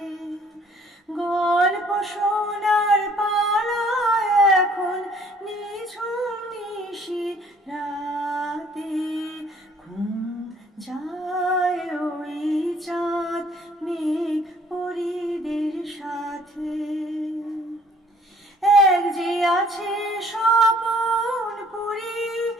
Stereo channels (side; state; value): both; normal; correlation 0.58